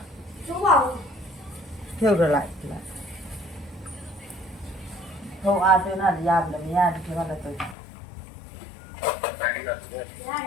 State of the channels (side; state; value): right; drops out; at 7.8 s